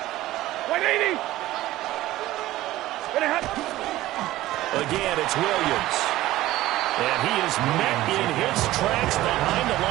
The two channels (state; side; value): quieter; left; 16.0 dB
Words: 180. Again, it's Williams. And he is met in his tracks behind the